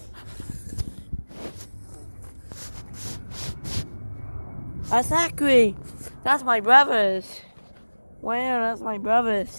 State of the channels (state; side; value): inverted; both; correlation -1.00